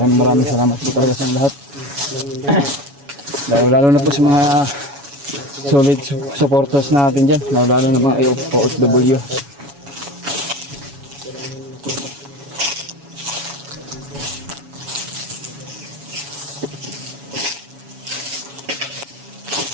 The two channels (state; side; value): late; left; 7.1 ms